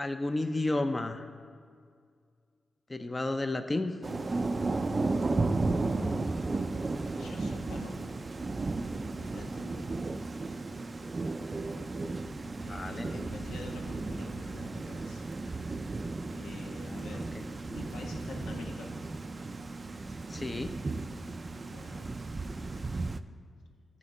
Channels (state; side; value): normal; both; correlation 0.94